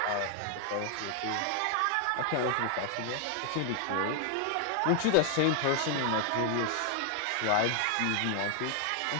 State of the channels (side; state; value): both; different; correlation 0.00